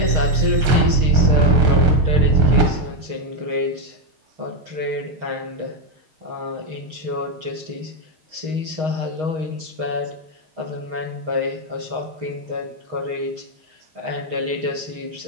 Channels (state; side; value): late; left; 6.4 ms